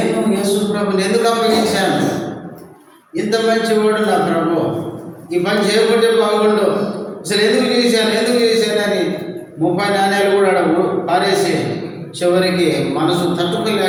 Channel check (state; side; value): identical; both; correlation 1.00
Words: యేసు ప్రభుని ఎందుకు అప్పగించాను? ఇంత మంచివాడు నా ప్రభు, ఈ పని చేయకుంటే బాగుండు, అసలు ఎందుకు చేశానని 30 నాణ్యాలు కూడా పారేసి చివరికి మనసు